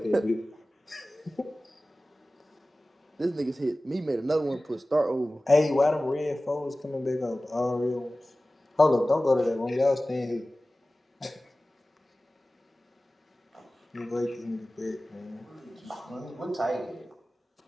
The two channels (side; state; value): both; normal; correlation 0.97